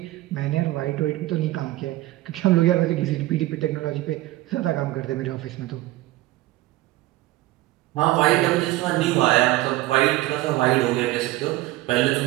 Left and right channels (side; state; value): left; quieter; 17.4 dB